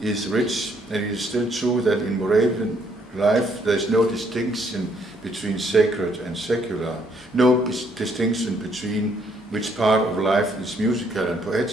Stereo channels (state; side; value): normal; both; correlation 0.69